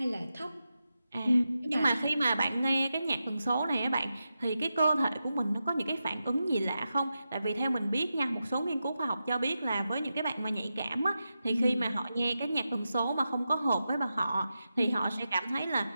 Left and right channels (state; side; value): inverted; both; correlation -0.90